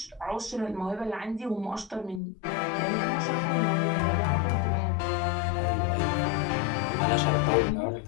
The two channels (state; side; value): drops out; right; at 2.2 s